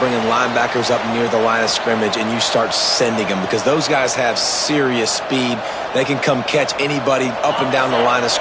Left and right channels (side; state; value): both; identical; correlation 1.00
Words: linebackers up near the line of scrimmage and you start sending them, because those guys have serious speed. They can come catch anybody up and down the line of